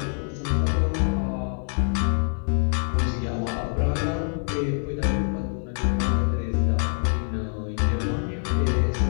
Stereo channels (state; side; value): silent; right; 61 dB below the other